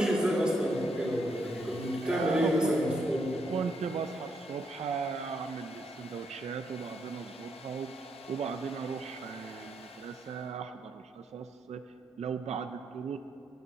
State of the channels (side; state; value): both; normal; correlation 0.77